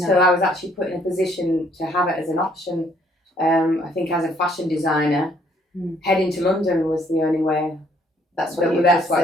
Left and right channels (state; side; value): normal; both; correlation 0.65